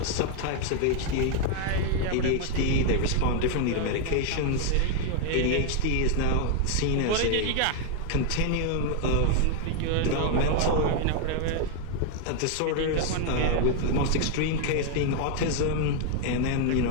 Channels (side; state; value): both; different; correlation 0.00